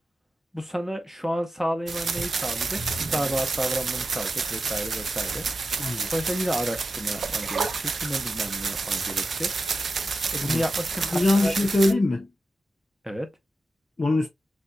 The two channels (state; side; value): normal; both; correlation 0.91